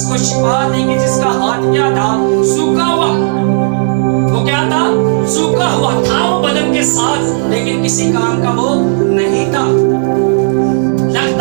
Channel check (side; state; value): left; silent; 68 dB below the other